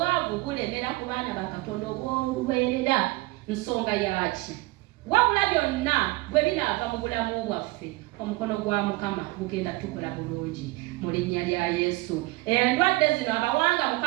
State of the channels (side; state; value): left; quieter; 21.5 dB